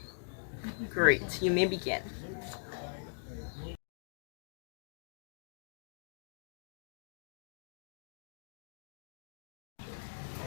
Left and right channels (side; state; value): right; silent; digital silence